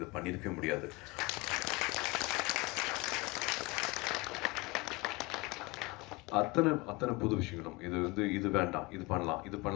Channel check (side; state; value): right; quieter; 24.2 dB